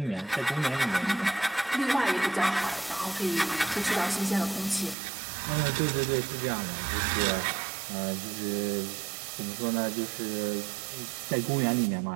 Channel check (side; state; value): left; drops out; at 5.0 s